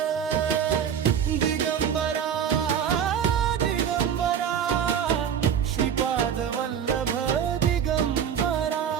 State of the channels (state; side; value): quieter; left; 8.4 dB